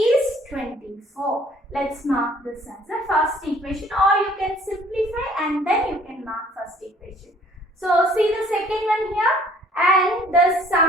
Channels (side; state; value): both; normal; correlation 0.57